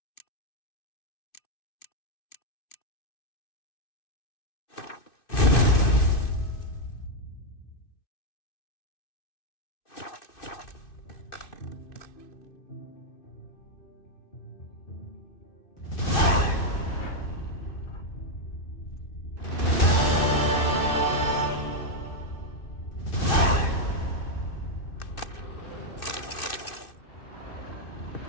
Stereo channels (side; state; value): right; late; 2.6 ms